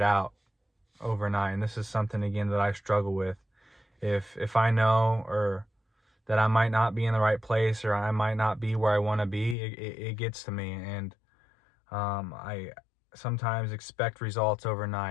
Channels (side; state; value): right; drops out; at 9.6 s